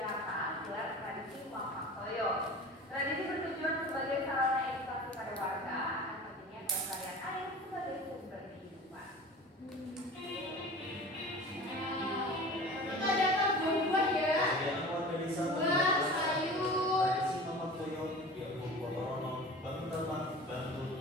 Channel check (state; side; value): normal; both; correlation 0.38